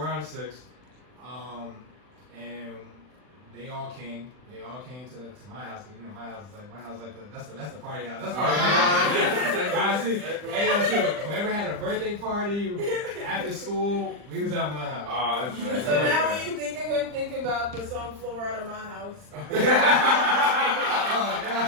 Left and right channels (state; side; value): late; left; 39 ms